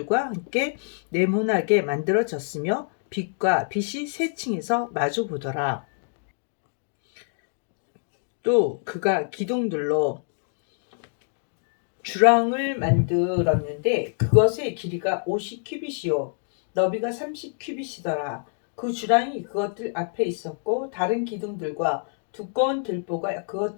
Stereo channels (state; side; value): silent; right; 61 dB below the other